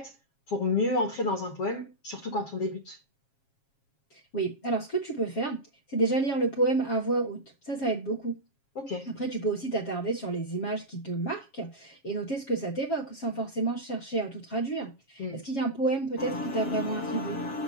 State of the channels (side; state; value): right; late; 7.3 ms